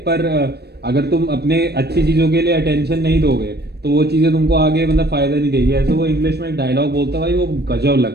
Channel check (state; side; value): late; left; 0.47 ms